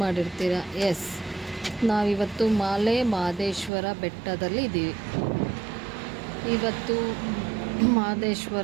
ಮಾಡಿರ್ತೀರ. ಎಸ್, ನಾವಿವತ್ತು ಮಾಲೆ ಮಹದೇಶ್ವರ ಬೆಟ್ಟದಲ್ಲಿ ಇದ್ದೀವಿ. ಇವತ್ತು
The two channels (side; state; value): left; drops out; at 3.7 s